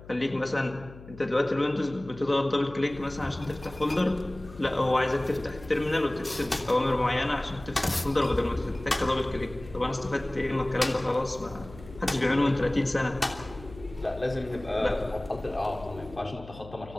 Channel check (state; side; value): noise; left; hum, 18 dB below the sound